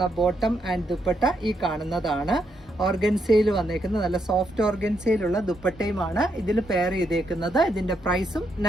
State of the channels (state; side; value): normal; both; correlation 0.78